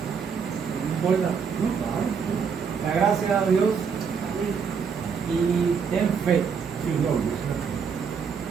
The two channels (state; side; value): quieter; left; 6.2 dB